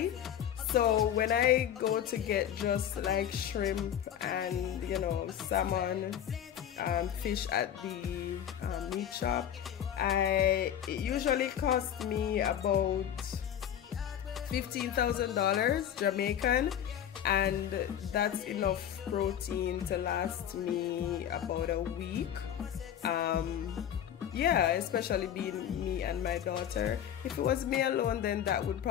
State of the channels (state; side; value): quieter; right; 9.9 dB